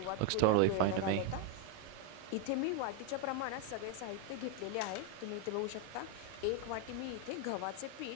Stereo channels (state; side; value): different; both; correlation 0.01